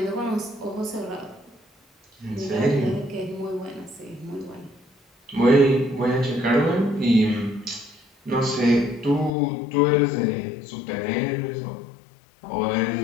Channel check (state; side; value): drops out; right; at 9.3 s